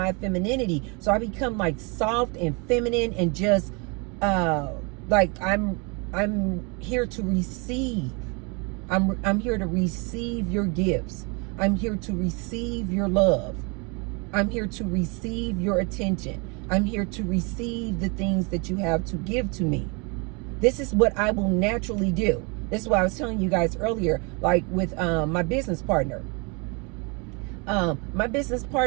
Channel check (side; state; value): left; quieter; 31.3 dB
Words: femininity. So I become like soft and feminine and just like I'm here to receive. I'm here to receive your gifts. I'm here to receive your love. I'm here to receive your attention. I'm here to receive the things that you have to give to me. This is what I will naturally do. This is what I was telling you guys earlier, like with my business partner. My business